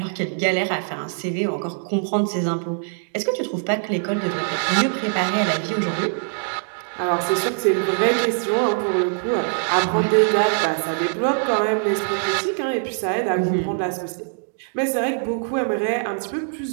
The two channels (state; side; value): silent; left; 64 dB below the other